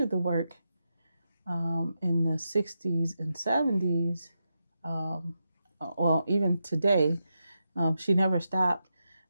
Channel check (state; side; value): inverted; both; correlation -0.87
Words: the work in the 60s and 70s. Um, well, even today, she never stopped.